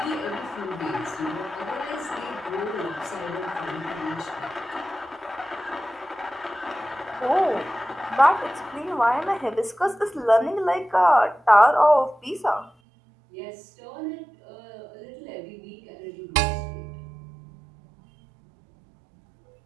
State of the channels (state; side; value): drops out; left; at 12.7 s